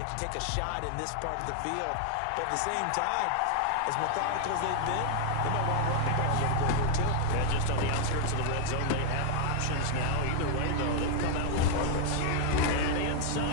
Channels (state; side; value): different; both; correlation 0.00